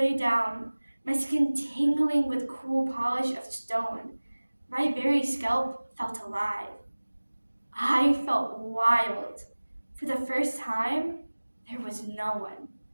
down, my skin tingling with cool polish of stone. My very scalp felt alive. I felt wild. For the first time, there was no one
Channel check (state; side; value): inverted; both; correlation -1.00